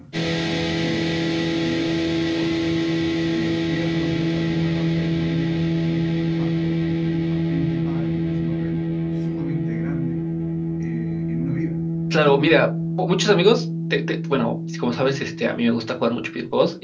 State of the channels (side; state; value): both; identical; correlation 1.00